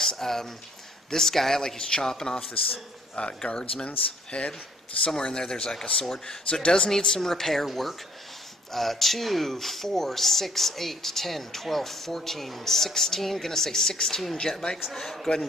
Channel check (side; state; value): both; normal; correlation 0.60